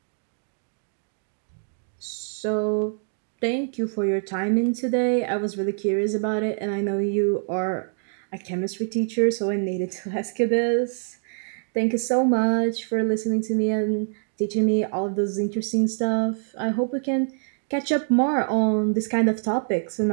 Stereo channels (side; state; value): left; silent; digital silence